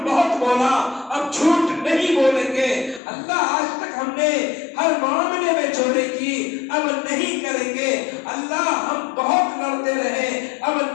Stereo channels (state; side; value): drops out; right; at 3.0 s